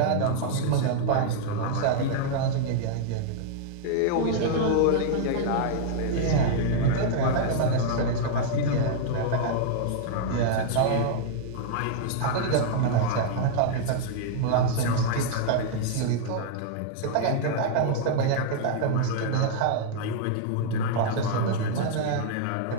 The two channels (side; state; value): both; different; correlation -0.01